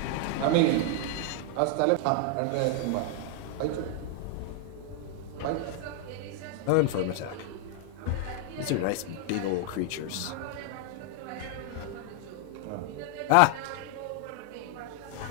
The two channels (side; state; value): both; different; correlation 0.00